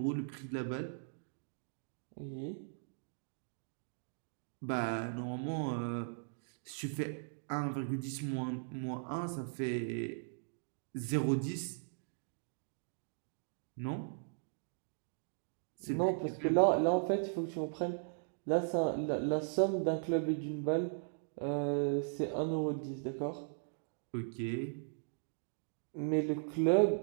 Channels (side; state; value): left; silent; digital silence